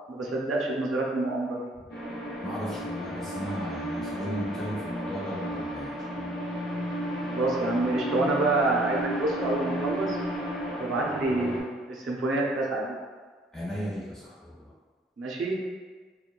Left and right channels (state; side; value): normal; both; correlation 0.59